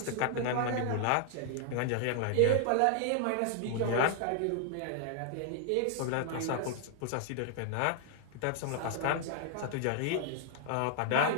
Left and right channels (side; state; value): both; different; correlation -0.01